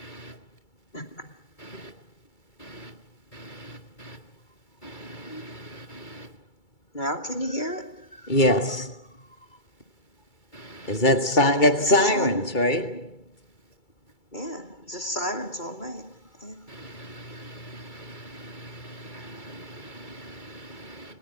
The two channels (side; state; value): right; late; 2.3 ms